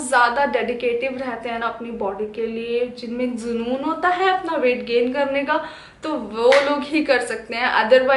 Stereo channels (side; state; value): both; identical; correlation 1.00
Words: ज़्यादा डेडिकेटिव रहते हैं ना अपनी बॉडी के लिए, जिनमें जुनून होता है अपना वेट गेन करने का, तो वो लोग ही कर सकते हैं।